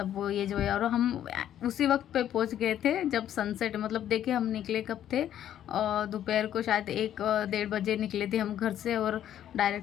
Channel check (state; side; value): quieter; right; 10.9 dB